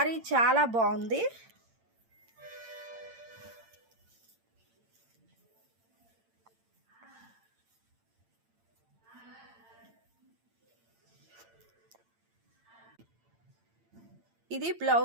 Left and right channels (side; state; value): left; late; 8.8 ms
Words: చాలా బాగుంది. ఇది